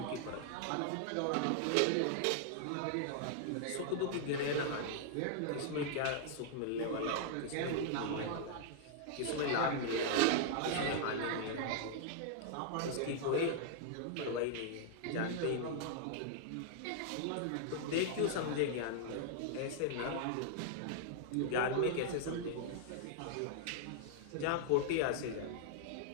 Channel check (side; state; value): both; different; correlation -0.01